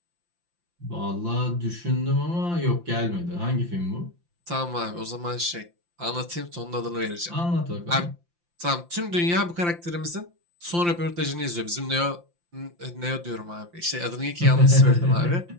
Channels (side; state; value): left; late; 5.8 ms